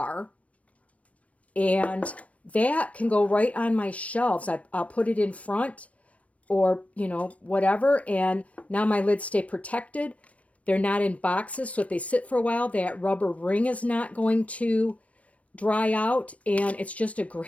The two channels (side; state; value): right; late; 0.066 ms